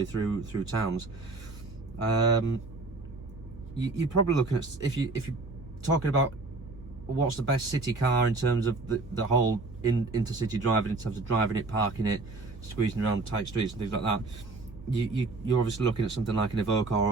through towns. You're probably looking at, if you're talking about what's the best city car in terms of the whole intercity driving, in terms of driving it, parking it, squeezing around tight streets and things like that, you're obviously looking at something like an Evoque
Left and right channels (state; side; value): quieter; left; 3.4 dB